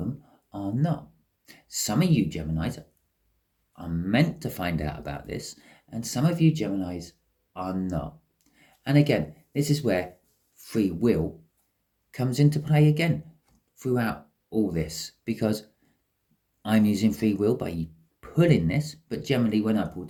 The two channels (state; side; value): identical; both; correlation 1.00